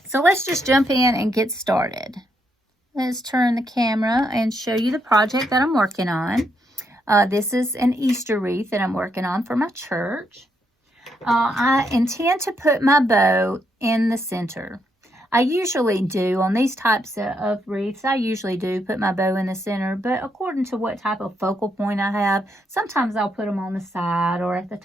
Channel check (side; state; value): both; normal; correlation 0.77